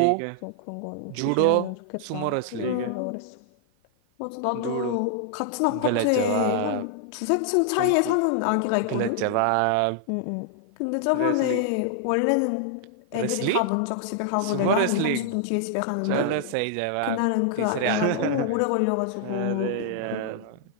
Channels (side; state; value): both; different; correlation -0.01